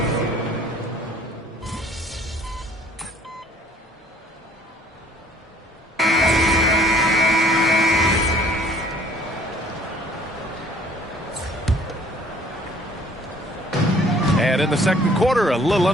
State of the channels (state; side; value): normal; both; correlation 0.56